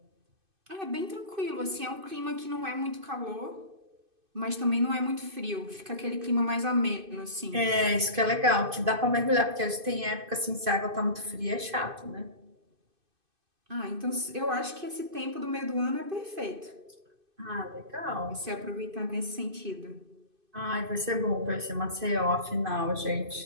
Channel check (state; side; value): late; left; 2.5 ms